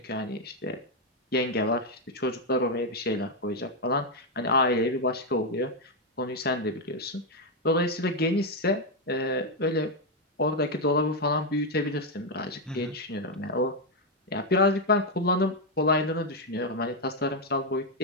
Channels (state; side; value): normal; both; correlation 0.03